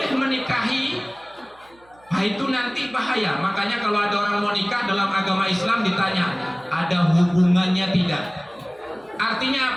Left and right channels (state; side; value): noise; right; hum, 30 dB below the sound